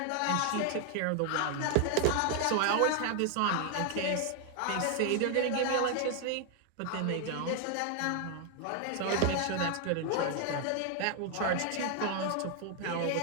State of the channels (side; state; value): both; different; correlation 0.00